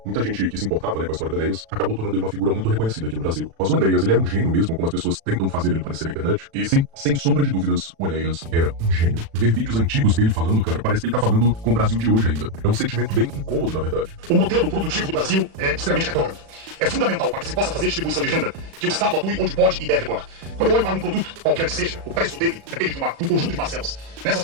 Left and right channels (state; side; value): late; left; 36 ms